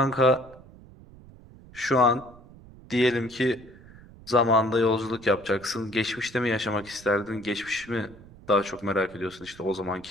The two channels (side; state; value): right; noise; rumble, 21 dB below the sound